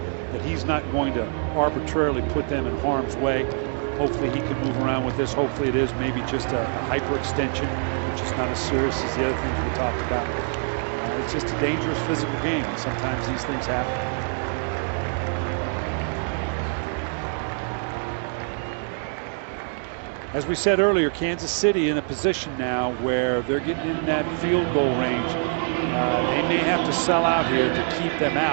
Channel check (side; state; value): left; silent; 55 dB below the other